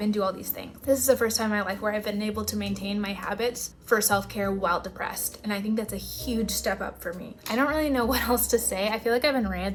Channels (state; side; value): identical; both; correlation 1.00